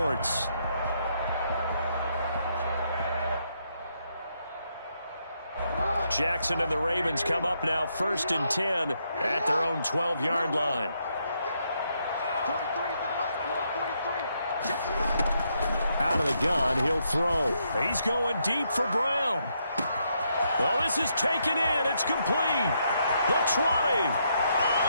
Jackson and the Ravens come up now 1st and 10 at their own 12-yard line. Out of the gun, he'll throw. He's going deep for Brown. Oh, this is taken in. It's complete. The 20.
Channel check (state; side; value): inverted; both; correlation -0.77